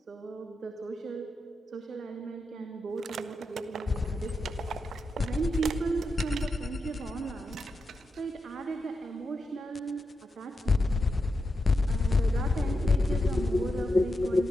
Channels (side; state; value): both; normal; correlation 0.88